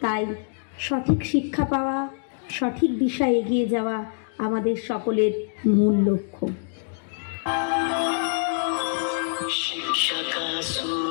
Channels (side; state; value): right; silent; digital silence